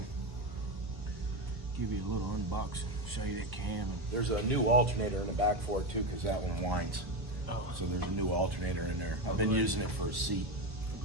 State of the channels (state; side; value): late; left; 1.5 ms